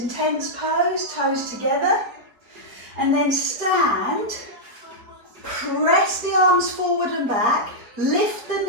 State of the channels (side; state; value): left; late; 4.2 ms